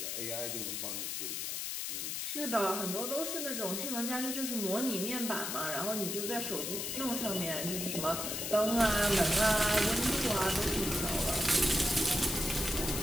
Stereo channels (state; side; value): noise; left; hiss, 3 dB below the sound